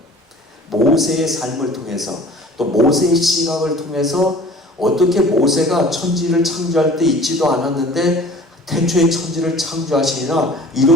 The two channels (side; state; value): both; normal; correlation 0.46